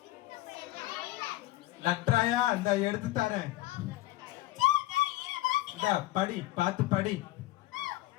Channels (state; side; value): quieter; right; 17.7 dB